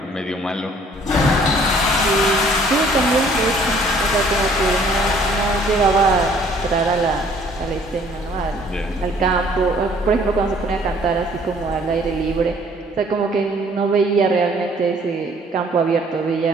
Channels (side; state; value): both; normal; correlation 0.58